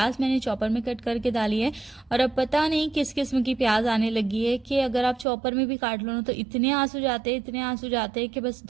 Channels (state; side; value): drops out; left; at 5.2 s